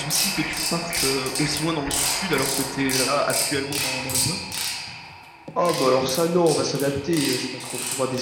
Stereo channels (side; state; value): both; identical; correlation 1.00